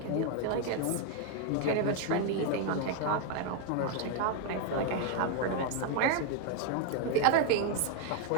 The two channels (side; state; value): both; different; correlation 0.00